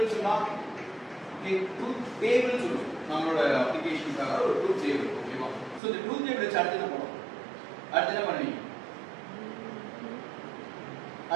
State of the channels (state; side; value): drops out; left; at 5.8 s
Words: சொல்லலாம் ட்ரூத் டேபிள் சொல்லுவோம் நம்மளோட அப்ளிகேஷனுக்காக ஒரு ட்ரூத் டேபிள் ஓகேவா ஸோ இந்த ட்ரூத் டேபிள் வச்சு அடுத்து என்ன பண்ணுவோம் அடுத்து என்ன பண்ணுவீங்க